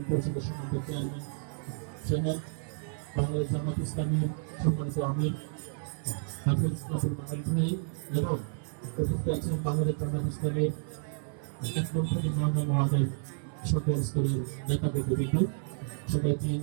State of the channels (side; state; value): left; silent; digital silence